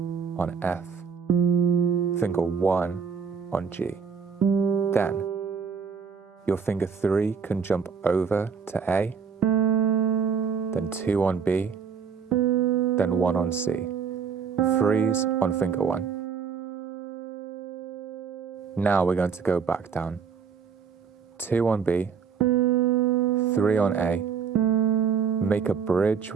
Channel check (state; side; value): quieter; left; 6.2 dB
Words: on F, finger 1 on G. Then, your finger 3 can jump over to A, then 2 on B, then 1 on C. Freeze on finger 1. Now we're going to go back down. 2 on B, 3 on A. Make a bridge